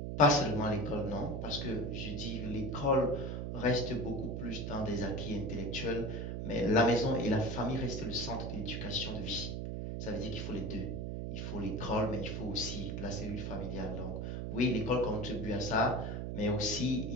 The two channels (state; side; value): noise; right; hum, 4 dB below the sound